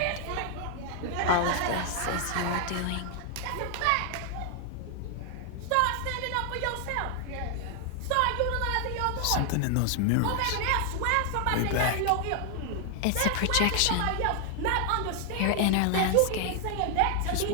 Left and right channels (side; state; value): both; different; correlation 0.00